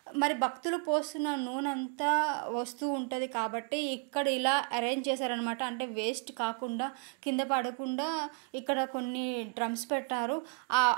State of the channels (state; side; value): quieter; left; 36.5 dB